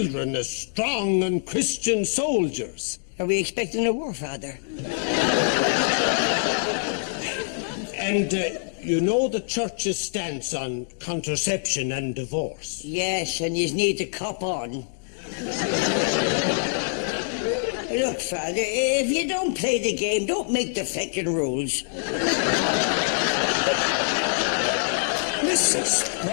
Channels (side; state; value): right; silent; digital silence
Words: as strong and Christian soldiers. Are we expecting a war, Father? And you know the church's stance on contraception and divorce. Yes, and you need to cop on. Look, Father, if you don't play the game, don't make the fucking rules. Mrs.